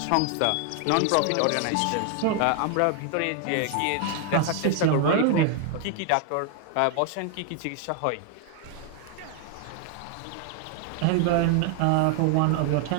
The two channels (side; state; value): both; different; correlation 0.00